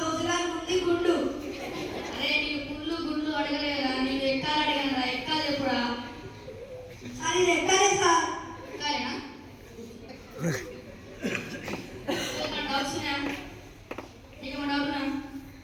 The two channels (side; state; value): both; identical; correlation 1.00